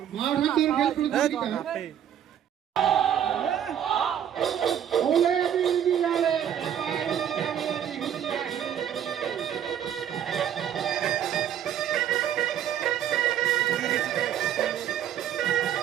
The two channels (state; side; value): quieter; left; 9.8 dB